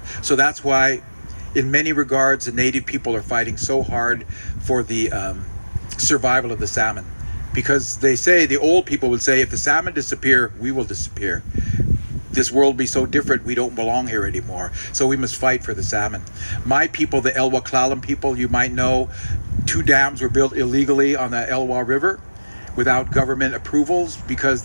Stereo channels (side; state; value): both; inverted; correlation -1.00